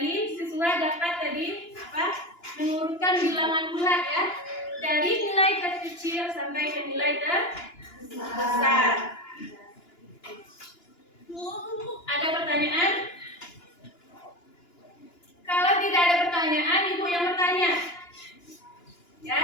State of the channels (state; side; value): late; right; 2.9 ms